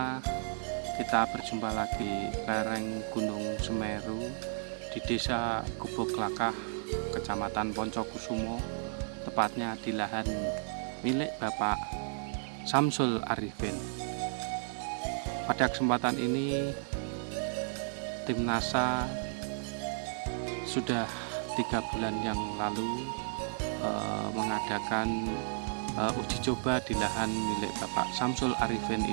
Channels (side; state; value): left; silent; digital silence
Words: kita berjumpa lagi lereng Gunung Semeru di Desa Gubuk-Lakah, Kecamatan Poncokusumo, tepatnya di lahan milik Bapak Samsul Arifin. Pada kesempatan ini, tim NASA sudah 3 bulan yang lalu mengadakan uji coba di lahan milik Bapak Samsul Arifin